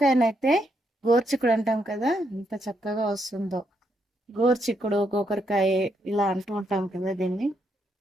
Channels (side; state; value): both; normal; correlation 0.77